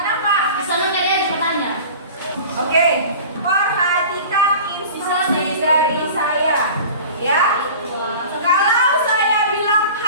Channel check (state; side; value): inverted; both; correlation -0.39